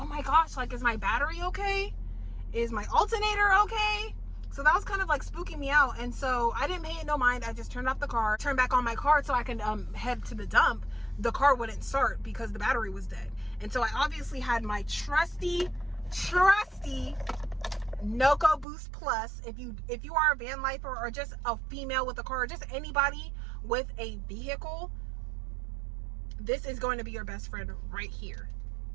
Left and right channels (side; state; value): left; drops out; at 18.7 s